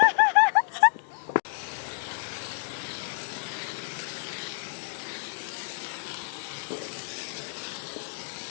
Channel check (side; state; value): right; silent; digital silence